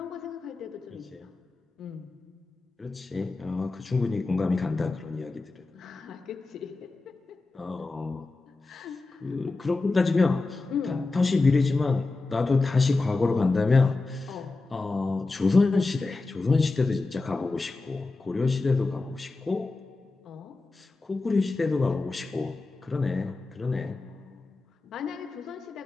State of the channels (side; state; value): right; quieter; 3.5 dB